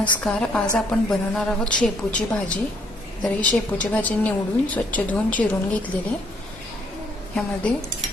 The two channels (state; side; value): normal; both; correlation 0.68